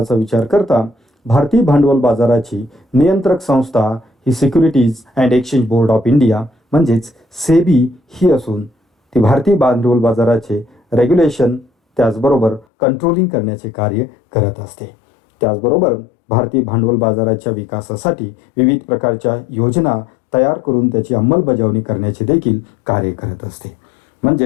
विचार करता भारतीय भांडवल बाजाराची नियंत्रक संस्था ही securities and exchange board of India म्हणजेच सेबी ही असून ती भारतीय भांडवल बाजाराचे रेग्युलेशन त्याचबरोबर कंट्रोलिंग करण्याचे कार्य करत असते. त्याचबरोबर भारतीय भांडवल बाजाराच्या विकासासाठी विविध प्रकारच्या योजना तयार करून त्याची अंमलबजावणी करण्याचे देखील कार्य करत असते.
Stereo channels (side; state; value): right; drops out; at 12.7 s